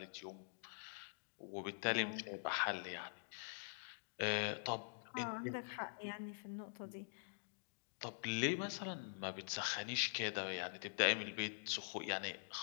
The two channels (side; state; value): right; silent; digital silence